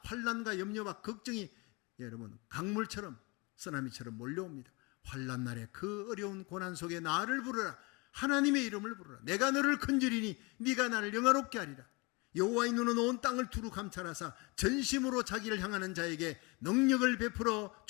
환난과 염려와 걱정이 여러분 강물처럼 쓰나미처럼 몰려옵니다. 환난 날에 그 어려운 고난 속에 나를 부르라. 하나님의 이름을 부르라. 내가 너를 건지리니 네가 나를 영화롭게 하리라. 여호와의 눈은 온 땅을 두루 감찰하사 전심으로 자기를 향하는 자에게 능력을 베풀어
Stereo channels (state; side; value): quieter; right; 27.4 dB